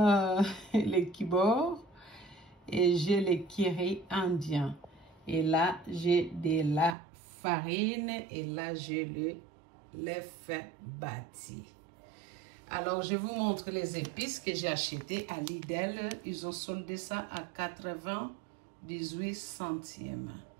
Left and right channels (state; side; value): drops out; left; at 7.0 s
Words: les kibor et j'ai le curry indien. Et là, j'ai de la farine et là, j'ai le l'œuf bâti. Alors, je vous montre les épices que j'ai achetées à Lidl. Ils ont soldé ça à 98 centimes.